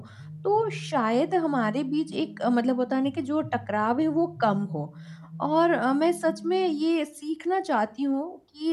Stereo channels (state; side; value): identical; both; correlation 1.00